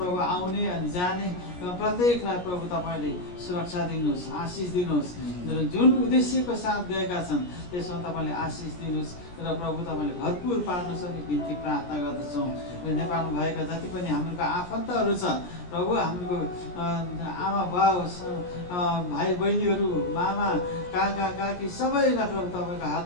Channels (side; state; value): right; late; 17 ms